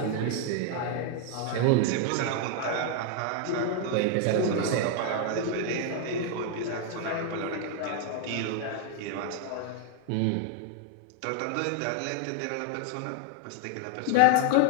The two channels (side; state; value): both; different; correlation 0.00